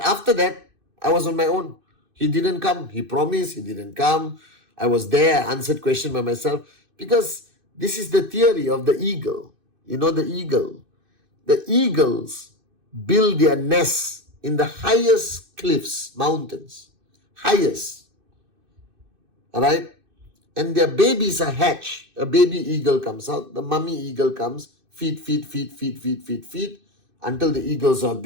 after that, I was on my own. He didn't come. He promised. He didn't come. I was there. I answered questions by myself. Because this is the theory of the eagle. You know the eagle. The eagles build their nests in the highest cliffs, mountains. Highest. Alright? And their babies are hatched. A baby eagle comes out. The mummy eagle comes. Feed, until the eagles are a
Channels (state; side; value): late; left; 2.6 ms